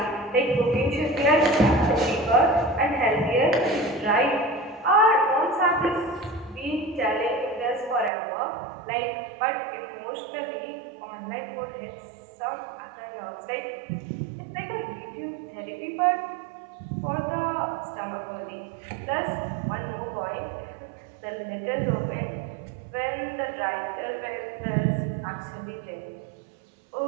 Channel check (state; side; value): drops out; left; at 8.1 s